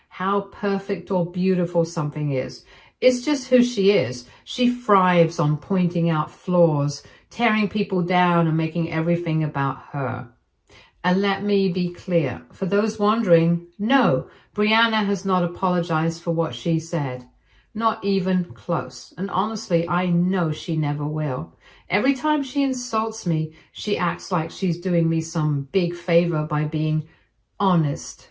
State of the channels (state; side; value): identical; both; correlation 1.00